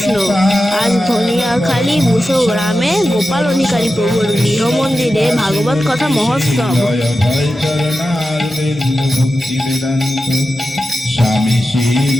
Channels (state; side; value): normal; both; correlation 0.92